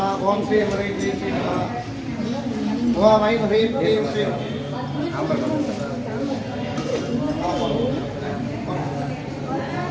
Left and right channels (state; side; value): identical; both; correlation 1.00